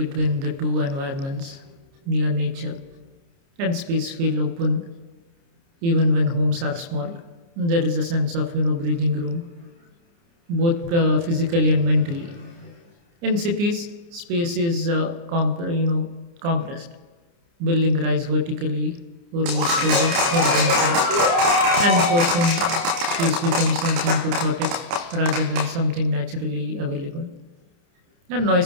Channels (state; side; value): late; left; 29 ms